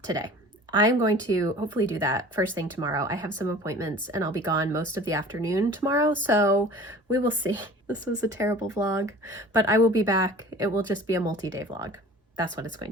today. I'm going to hopefully do that first thing tomorrow. I have some appointments and I'll be gone most of the afternoon tomorrow, so we will see. This was a terrible vlog, but I will be back. It will just be a multi-day vlog. That's what it's going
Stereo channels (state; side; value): normal; both; correlation 0.44